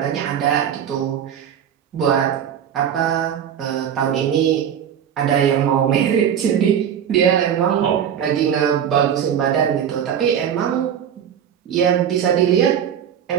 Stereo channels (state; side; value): quieter; left; 9.0 dB